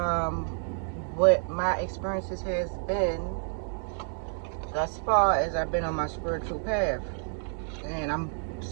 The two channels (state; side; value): silent; left; 58 dB below the other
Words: what my experiences has been thus far as I've been on my spiritual path. And I'm